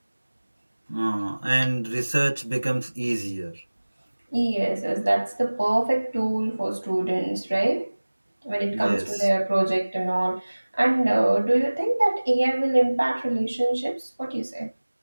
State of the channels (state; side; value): inverted; both; correlation -1.00